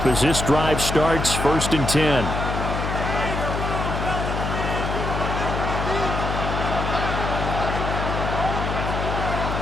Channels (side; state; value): left; noise; hum, 3 dB below the sound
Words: as this drive starts 1st and 10.